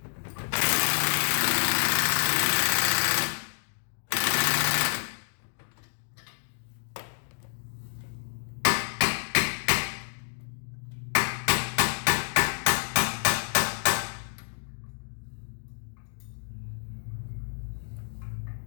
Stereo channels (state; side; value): silent; right; digital silence